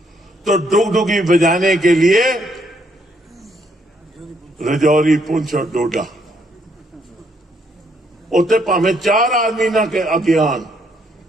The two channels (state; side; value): normal; both; correlation 0.71